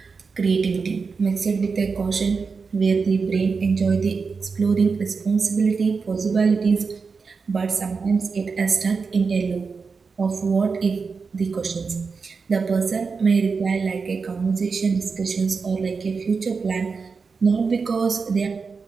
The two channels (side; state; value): left; quieter; 5.0 dB